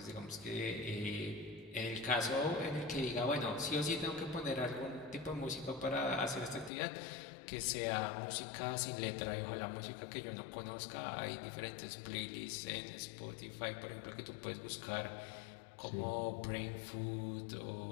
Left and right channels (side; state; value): right; drops out; at 6.7 s